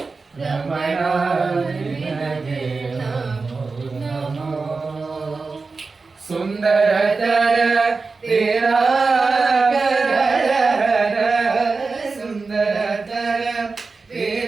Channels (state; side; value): quieter; left; 4.2 dB